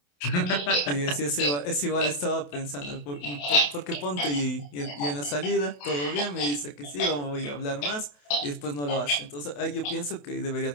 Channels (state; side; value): late; right; 28 ms